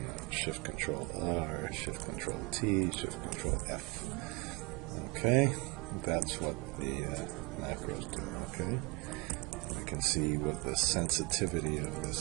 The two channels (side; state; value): left; quieter; 25.0 dB